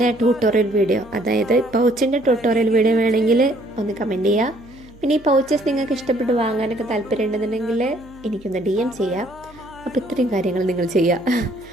ട്യൂട്ടോറിയൽ വീഡിയോ, അതായത് പൗച്ചിൻ്റെ ട്യൂട്ടോറിയൽ വീഡിയോ വേണമെങ്കിൽ ഒന്ന് കമൻറ്റ് ചെയ്യുക. പിന്നെ ഈ പൗച്ചസ് നിങ്ങൾക്ക് ഇഷ്ടപ്പെട്ട് വാങ്ങാനൊക്കെ താല്പര്യം ഉണ്ടെന്നുണ്ടെങ്കിൽ എനിക്കൊന്ന് DM ചെയ്യാം. അപ്പോൾ ഇത്രയും കാര്യങ്ങൾ നിങ്ങൾ ചെയ്യുക,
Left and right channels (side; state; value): right; noise; hum, 24 dB below the sound